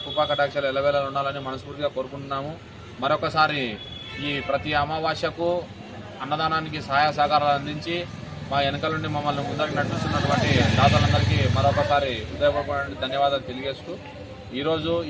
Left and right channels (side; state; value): both; identical; correlation 1.00